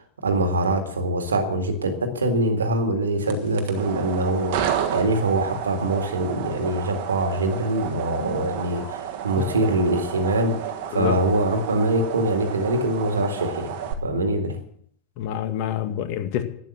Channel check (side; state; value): both; inverted; correlation -0.33